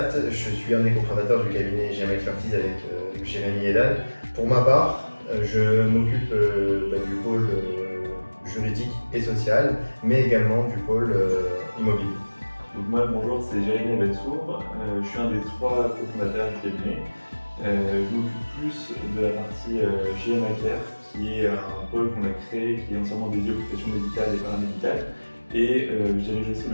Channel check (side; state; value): both; inverted; correlation -1.00